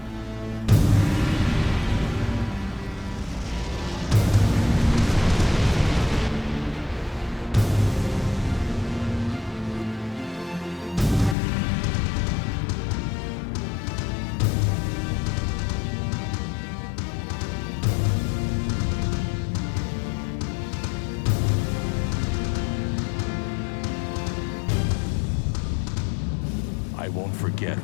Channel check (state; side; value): drops out; right; at 11.4 s